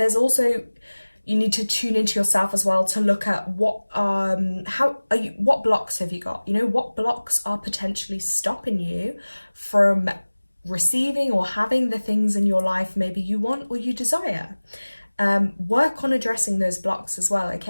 also, you need to tune into yourself as well to look at what blocks have you got? You know, what blocks are potentially stopping you from receiving or having the things in your life maybe you want or you desire. Work on addressing those blocks as well,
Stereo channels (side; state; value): both; inverted; correlation -1.00